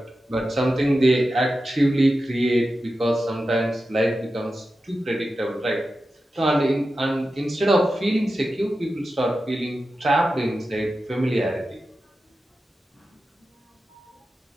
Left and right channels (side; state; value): both; normal; correlation 0.92